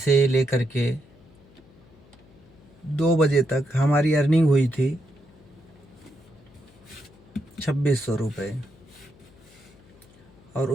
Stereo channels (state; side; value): noise; left; hum, 26 dB below the sound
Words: लेकर के 2 बजे तक हमारी अर्निंग हुई थी 2600 रुपये। और